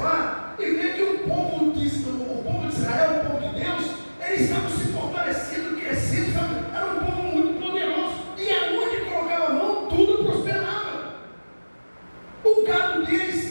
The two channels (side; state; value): both; inverted; correlation -1.00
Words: e ver que o povo de Israel, o povo de Deus, eles estavam se fortalecendo, crescendo, era um povo muito poderoso, e aonde colocava a mão, tudo prosperava. O gado